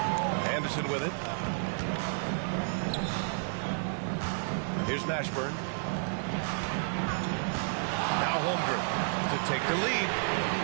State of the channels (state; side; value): silent; left; digital silence